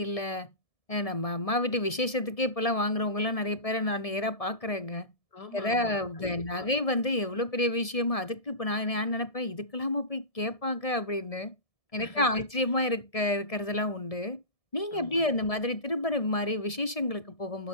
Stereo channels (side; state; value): right; late; 1.7 ms